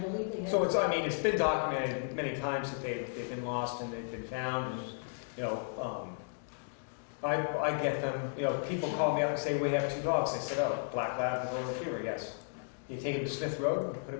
they have. So it's been documented many times that they've been lost and they've been found. And, you know, I get them. You know, people call me up and say we have 2 dogs. I said, oh, black lab and golden retriever. Yes. You take them to Smith Road and put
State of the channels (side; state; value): right; silent; digital silence